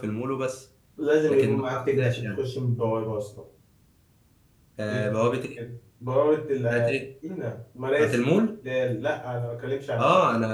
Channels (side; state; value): both; identical; correlation 1.00